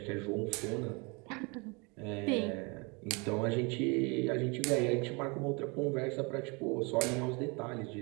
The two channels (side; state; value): left; quieter; 29.8 dB